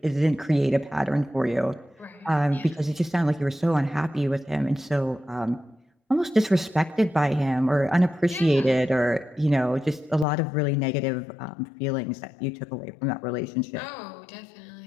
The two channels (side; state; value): right; drops out; at 10.2 s